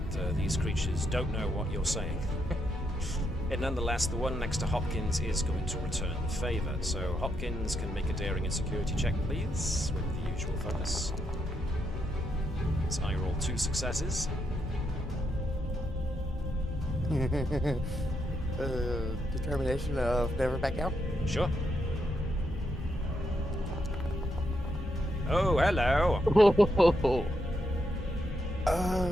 these creatures don't know what you're saying, and nonetheless the one next to Hopkins is going to return the favour. So Hopkins can make a daring and security check, please, with the usual focus. So I roll 2 successes. Determination of never back out? Sure. Oh, hello!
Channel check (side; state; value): both; normal; correlation 0.80